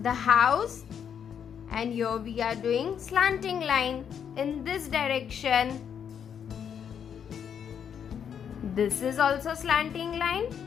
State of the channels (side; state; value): right; quieter; 8.0 dB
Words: house, and here we are doing slanting line in this direction. This is also slanting line.